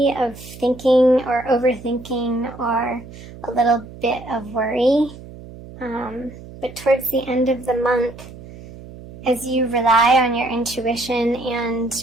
of thinking or overthinking or a little bit of worry. But towards the end of the month, as you rely on your intuition and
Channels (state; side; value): noise; right; hum, 16 dB below the sound